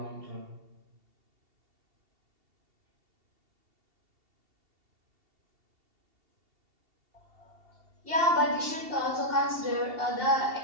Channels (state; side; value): late; left; 2.7 ms